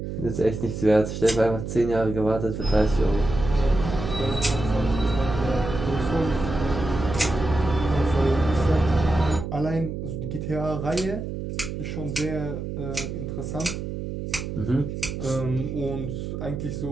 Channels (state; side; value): noise; right; hum, 6 dB below the sound